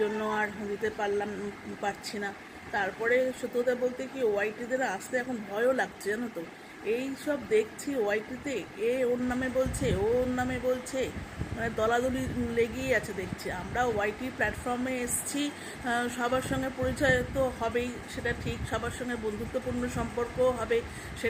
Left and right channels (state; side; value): identical; both; correlation 1.00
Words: জন্য আর দিতে পারছি না। তারপরে সত্যি কথা বলতে কি, ওয়াইটিদের আসতে এখন ভয়ও লাগছে, জানো তো। এই সব দেখছি ওয়াইটিতে, এ ওর নামে বলছে, ও ওর নামে বলছে, মানে দলাদলি লেগেই আছে দেখছি। আমরা ওয়াইটি প্ল্যাটফর্মে এসছি, সবার সঙ্গে পরিচয় তো হবেই, সেটা ঠিক। সবার সঙ্গে বন্ধুত্বপূর্ণ সম্পর্কও হবে,